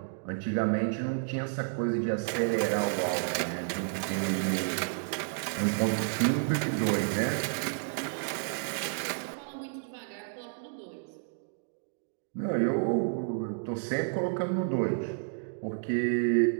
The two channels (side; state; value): left; silent; digital silence